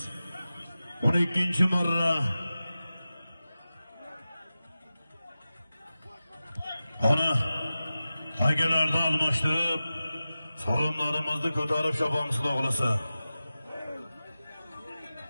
12-marra Ona akalarni almashtirib, so'rinlarimizni ko'tarib chopamiz xudo xolasa.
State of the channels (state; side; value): inverted; both; correlation -0.95